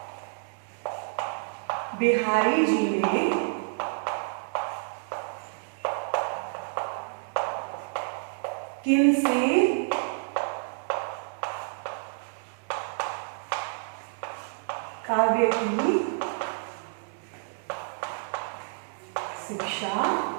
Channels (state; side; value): silent; left; digital silence